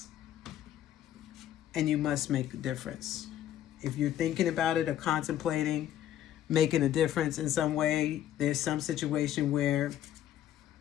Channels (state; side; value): quieter; right; 11.6 dB